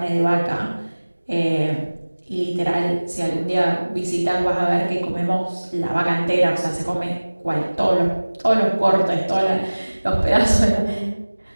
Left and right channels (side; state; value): both; inverted; correlation -1.00